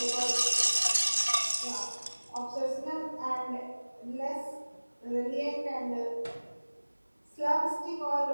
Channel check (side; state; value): both; inverted; correlation -1.00